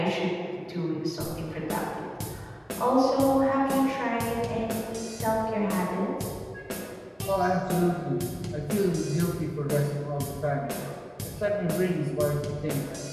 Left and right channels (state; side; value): identical; both; correlation 1.00